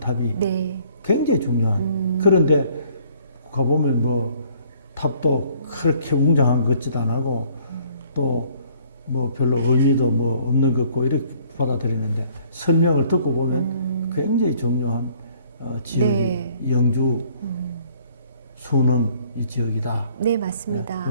탑이 네. 굉장히 중요한. 그런데 가보면 뭐 탑도 그렇게 웅장한 것 같지도 안 하고 또 뭐 별로 의미도 뭐 없는 것 같고 이렇게 받아들이는데 설명을 듣고 보면 굉장히 중요한 지역이 네. 영주 순흥 이 지역이다. 네, 맞습니다.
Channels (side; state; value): both; inverted; correlation -0.60